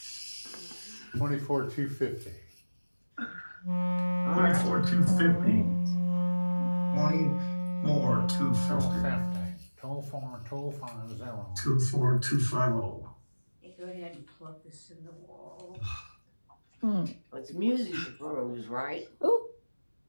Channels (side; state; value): both; inverted; correlation -1.00